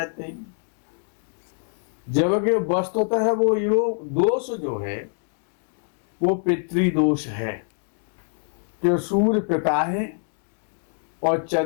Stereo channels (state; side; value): silent; right; digital silence